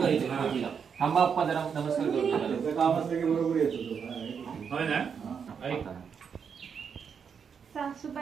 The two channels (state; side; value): quieter; left; 6.7 dB